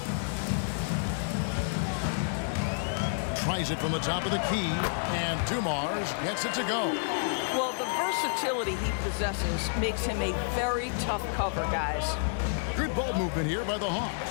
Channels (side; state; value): right; silent; digital silence